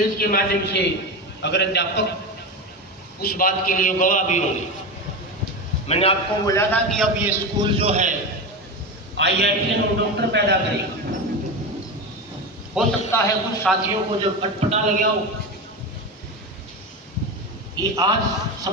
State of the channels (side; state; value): both; normal; correlation 0.20